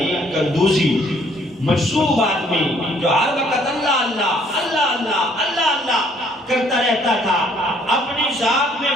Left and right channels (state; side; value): normal; both; correlation 0.63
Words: قندوزی، مجذوب آدمی جو ہر وقت اللہ اللہ اللہ اللہ اللہ اللہ کرتا رہتا تھا، اپنی ذات میں